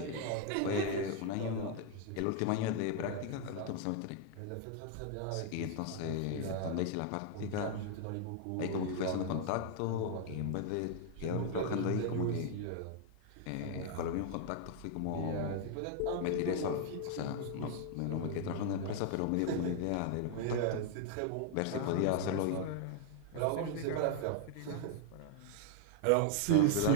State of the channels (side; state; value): both; different; correlation 0.00